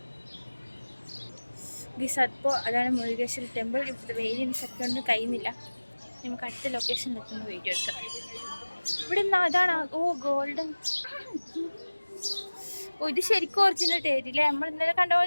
അപ്പോൾ അതാണ് മുരുകേശ്വര ടെമ്പിൾ. ഇവിടുത്തെ വെയിലിന് ശക്തി കൊണ്ട് കഴിയുന്നില്ല. നമുക്ക് അടുത്ത ലൊക്കേഷനിൽ എത്തുന്ന വീഡിയോ എടുക്കാം. ഇവിടെ അതാണ്. ഓ ഗോൾഡൻ. ഓ ഇത് ശരിക്കും ഒറിജിനൽ ടേരില്ലേ? നമ്മൾ ഇന്നലെ കണ്ട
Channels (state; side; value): inverted; both; correlation -1.00